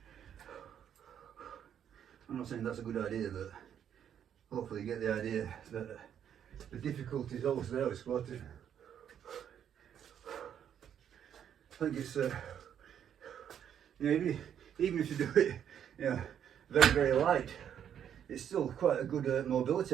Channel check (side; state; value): left; quieter; 9.1 dB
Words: I'm not saying that's a good idea, but hopefully you get the idea that the difficulty is always there with squatting. I think it's, you know, even if you do it, you know, very, very light, it's still quite a good mobility